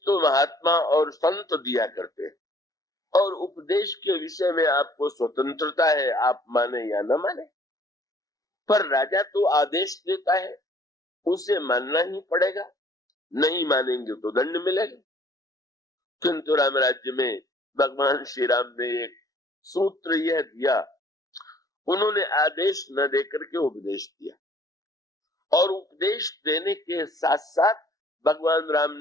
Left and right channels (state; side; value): late; right; 0.18 ms